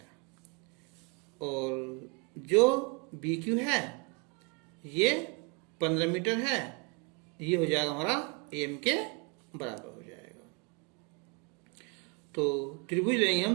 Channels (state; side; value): quieter; left; 29.2 dB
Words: और जो BQ है ये 15 मीटर है। ये हो जाएगा हमारा AM के बराबर हो जाएगा। तो त्रिभुज लेंगे